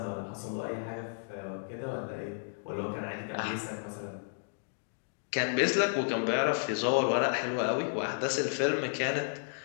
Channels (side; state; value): right; silent; digital silence